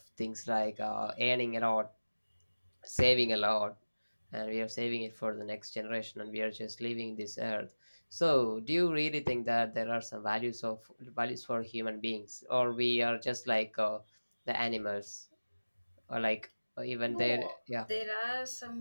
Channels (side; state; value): both; inverted; correlation -1.00